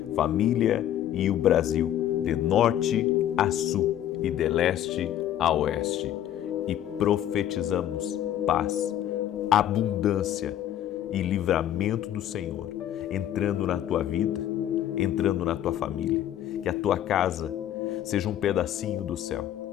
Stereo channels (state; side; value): quieter; right; 11.5 dB